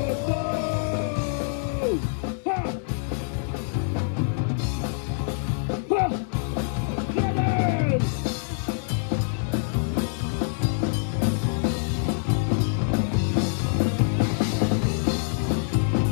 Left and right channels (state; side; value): silent; right; 61 dB below the other